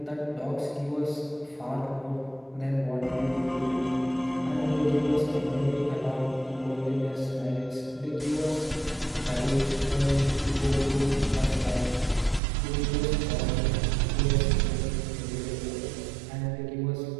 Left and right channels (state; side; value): drops out; left; at 12.4 s